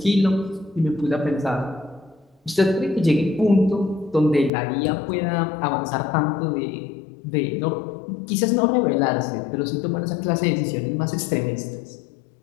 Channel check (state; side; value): drops out; right; at 4.5 s